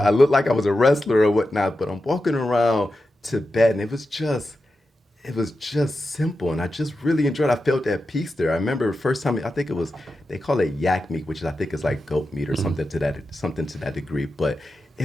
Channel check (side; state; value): both; normal; correlation 0.90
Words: looked like I was a wrestler or whatnot, but I'm walking around Tibet, and it was just simple, and I just really enjoyed it. I felt that peace there. I remember the first time, I think it was, they call it yak meat, which I think is like goat meat or something to that degree. But